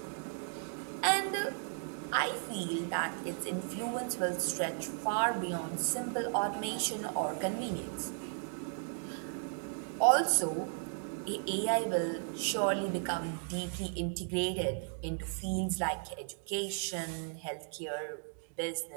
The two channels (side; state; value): left; silent; 54 dB below the other